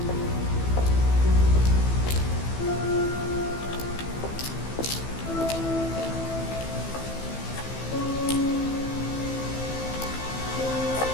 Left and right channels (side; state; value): right; late; 15 ms